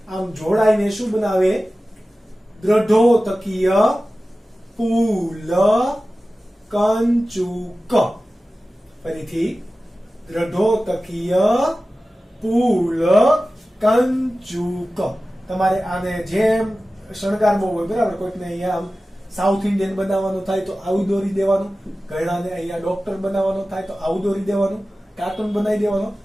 આમ જોડાઈને શું બનાવે? દ્રઢોતકીય પુલકંચુક. ફરીથી દ્રઢોતકીય પુલકંચુક. તમારે આને જેમ શણગારવો હોય બરાબર, કોઈકને અહીંયા આમ સાઉથ ઇન્ડિયન બનાવવાનું થાય તો આવું દોરી દેવાનું, ઘણાને અહીંયા ડોક્ટર બનાવવાનું થાય તો આવું દોરી દેવાનું, કાર્ટૂન બનાવી દેવાનું.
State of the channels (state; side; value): normal; both; correlation 0.95